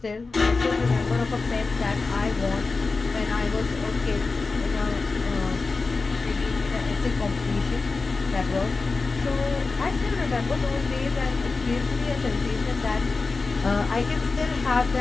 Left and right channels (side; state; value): right; quieter; 4.0 dB